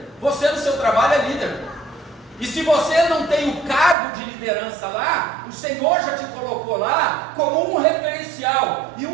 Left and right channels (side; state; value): left; drops out; at 4.0 s